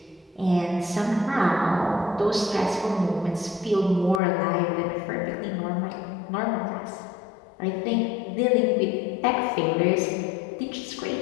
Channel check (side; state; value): right; drops out; at 4.2 s